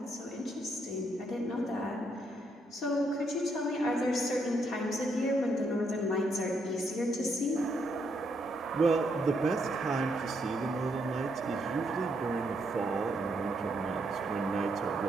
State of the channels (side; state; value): both; normal; correlation 0.76